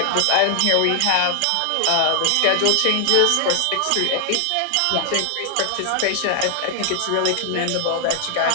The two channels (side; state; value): both; different; correlation 0.00